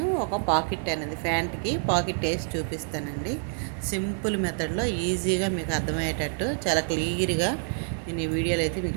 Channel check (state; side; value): silent; left; 60 dB below the other